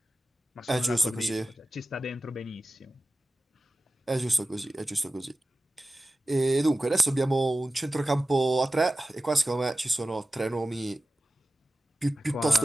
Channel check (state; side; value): normal; both; correlation 0.95